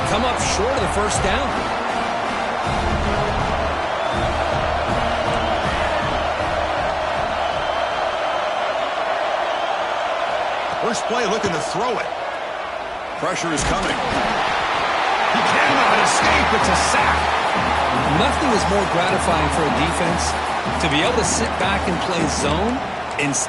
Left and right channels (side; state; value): both; identical; correlation 1.00